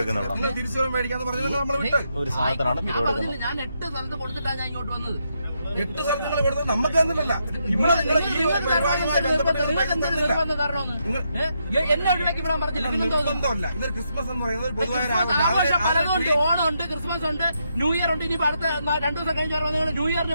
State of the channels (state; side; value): inverted; both; correlation -0.80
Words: തിരിച്ചു മേടിക്കാന്ന് പറഞ്ഞത് നമ്മൾ വിട്ട് ഒരു സാധനത്തിനാണ് ഞാൻ 8 സ്ഥലത്ത് കൊടുത്തിട്ടാണ് ഞാൻ ഇങ്ങോട്ട് വന്നത്. 8 സ്ഥലത്തുകൾ കൊടുത്തത് നമുക്ക് തന്നിട്ടില്ല. ഇവിടെ നിങ്ങൾ ഈ പരിപാടിയുമായി ബന്ധപ്പെട്ട് എന്നെ ഒഴിവാക്കി വിടാൻ പറഞ്ഞില്ല. ബന്ധമല്ല. ഇതൊരു ക്രിസ്മസ് എന്ന് പറയുന്നത് പൊതുവായ ആഘോഷം പലതുണ്ട്. ഓണം ഉണ്ട്, ക്രിസ്മസ് ഉണ്ട്, ന്യൂ ഇയർ ഉണ്ട്. ഇനി അടുത്ത 2 ദിവസം കഴിഞ്ഞ നിങ്ങൾ ന്യൂ